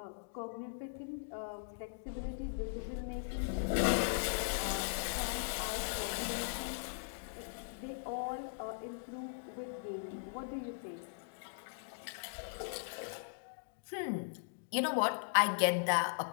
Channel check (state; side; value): silent; right; digital silence